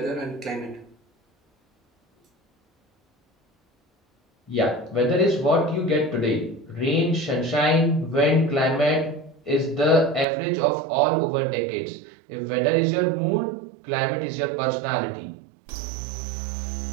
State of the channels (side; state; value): left; drops out; at 10.2 s